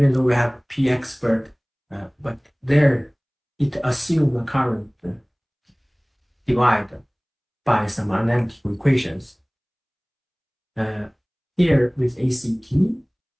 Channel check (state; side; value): identical; both; correlation 1.00